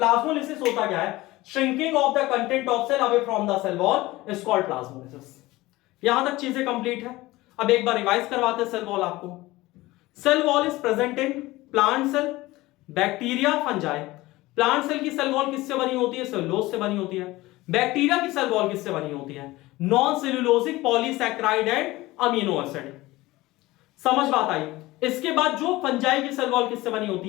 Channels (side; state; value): right; quieter; 19.2 dB